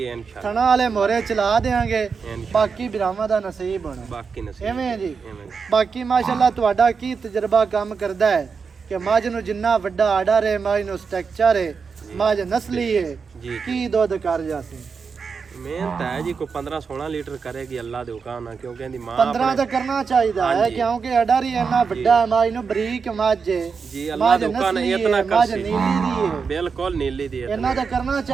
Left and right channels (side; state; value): left; quieter; 5.5 dB